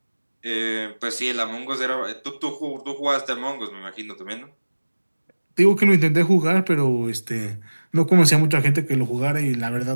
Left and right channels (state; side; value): inverted; both; correlation -1.00